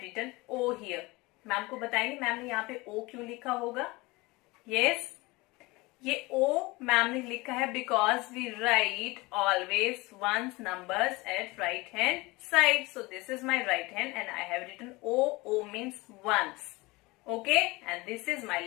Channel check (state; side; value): quieter; right; 22.9 dB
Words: written O here. Ma'am को बताएंगे ma'am ने यहाँ पे O क्यों लिखा होगा? Yes, ये O ma'am ने लिखा है because we write always ones numbers at right hand side. So this is my right hand and I have written O. O means ones. Okay, and this is my